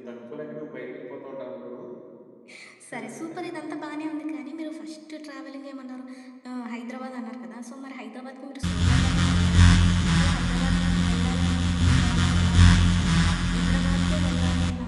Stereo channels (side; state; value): both; identical; correlation 1.00